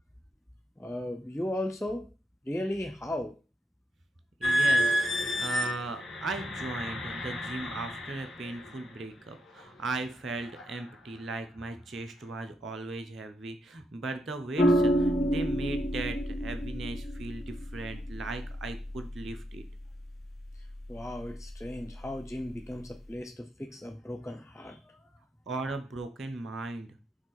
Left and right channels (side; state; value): both; normal; correlation 0.82